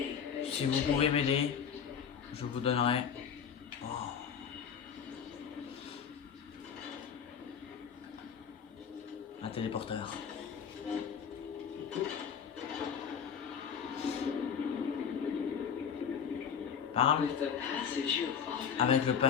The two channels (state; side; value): quieter; right; 7.4 dB